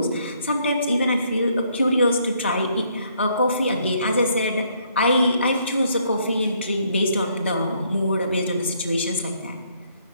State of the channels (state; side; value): inverted; both; correlation -0.69